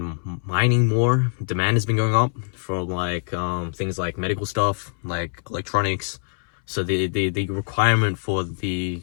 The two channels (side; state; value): right; silent; 63 dB below the other